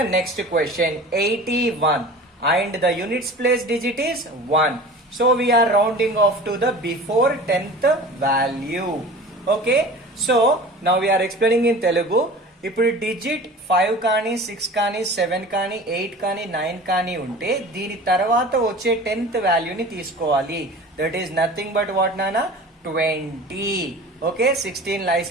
next question. 81. And the units place digit is 1. So we are rounding off to the before 10th value. Okay. So now we are explaining in Telugu. ఇప్పుడు digit 5 కానీ 6 కానీ 7 కానీ 8 కానీ 9 కానీ ఉంటే దీని తర్వాత వచ్చే 10th వాల్యూని తీసుకోవాలి. That is nothing but what నానా 20. Okay, 16 lies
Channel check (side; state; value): both; normal; correlation 0.39